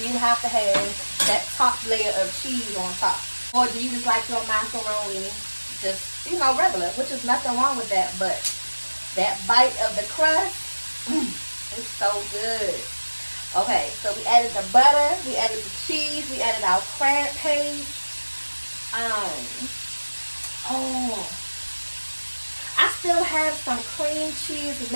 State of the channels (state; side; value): inverted; both; correlation -1.00